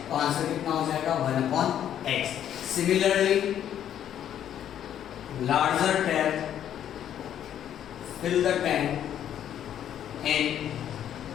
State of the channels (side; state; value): right; quieter; 10.3 dB